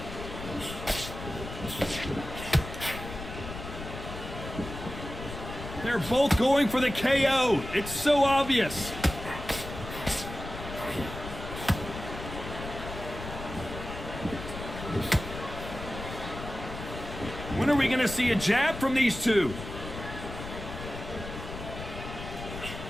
They're both going for the KO. It's so obvious. When are we going to see a jab from these two?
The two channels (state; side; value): noise; left; rumble, 9 dB below the sound